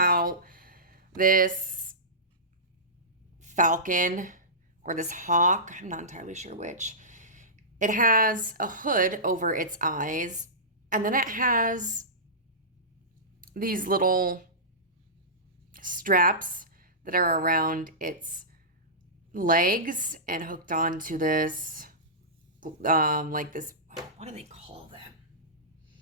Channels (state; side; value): normal; both; correlation -0.20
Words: this falcon or this hawk, I'm not entirely sure which, it has a hood over its eyes, and then it has these little straps that are around its legs and hooked onto this, like this, what do they call them?